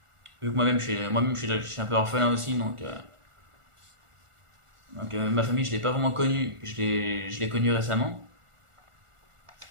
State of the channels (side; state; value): left; late; 1.4 ms